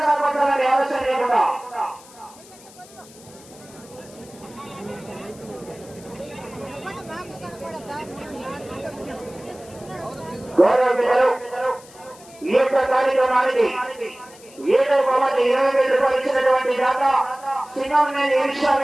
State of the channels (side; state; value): left; noise; hiss, 22 dB below the sound